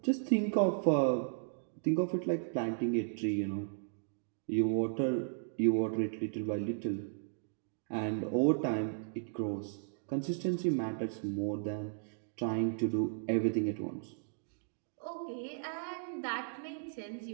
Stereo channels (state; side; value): silent; left; digital silence